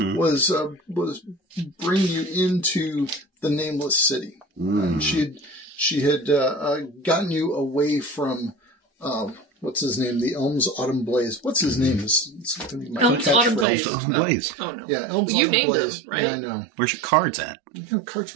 was bringing you into the Nameless City. And she had gotten you away from what's his name? The Elms Autumn Blaze. What's his name? It's gonna be my Elms Autumn catchphrase. Blaze. Blaze. Oh no. Yeah, Elms You Autumn named Blaze. him, right? Yeah, I know. Where's your cards at? You know, cards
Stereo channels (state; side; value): drops out; left; at 13.7 s